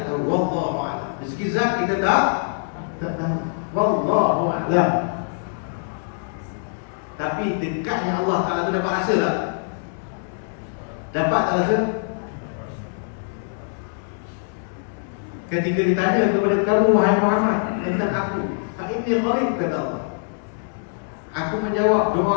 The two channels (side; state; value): right; silent; 63 dB below the other